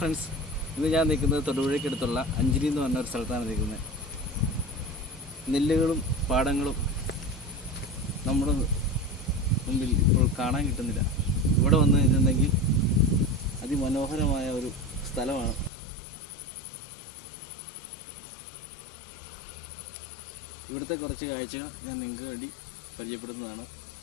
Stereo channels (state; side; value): drops out; right; at 15.7 s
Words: friends, ഇന്ന് ഞാൻ നിൽക്കുന്നത് തൊടുപുഴയ്ക്കടുത്തുള്ള അഞ്ചിരി എന്ന് പറഞ്ഞ ഒരു സ്ഥലത്താണ് നിൽക്കുന്നത്. നെല്ലുകളും പാടങ്ങളും നമ്മുടെ മുമ്പിൽ ഇപ്പോൾ കാണാൻ കിട്ടുന്നില്ല. ഇവിടെ വന്നു കഴിഞ്ഞിട്ടുണ്ടെങ്കിൽ അതിമനോഹരമായ ഒരു സ്ഥലമാണ്. ഇവിടുത്തെ കുറച്ച് കാഴ്ചകൾ ഞാൻ നിങ്ങൾക്ക് വേണ്ടി പരിചയപ്പെടുത്തുന്നതാണ്